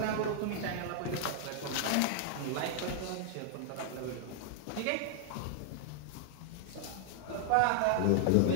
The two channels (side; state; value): both; different; correlation -0.01